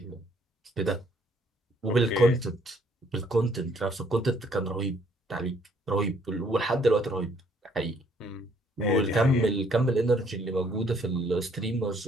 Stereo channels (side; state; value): both; normal; correlation 0.65